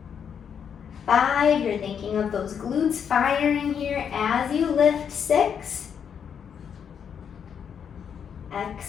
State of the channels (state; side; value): quieter; right; 7.6 dB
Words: 5, you're thinking of those glutes firing here as you lift. 6,